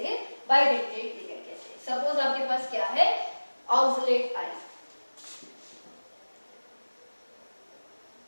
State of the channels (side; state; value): both; inverted; correlation -1.00